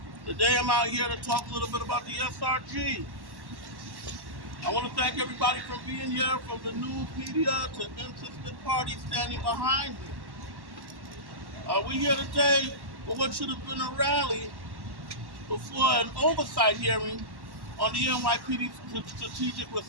Today I'm out here to talk a little bit about the SRG. I want to thank everybody for being here, from the news media to interested parties standing behind me. We're here today for what should have been a rally before an oversight hearing on the NYPD Strategic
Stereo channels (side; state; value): left; late; 1.1 ms